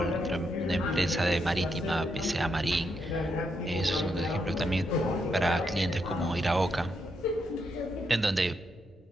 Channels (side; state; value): both; normal; correlation 0.80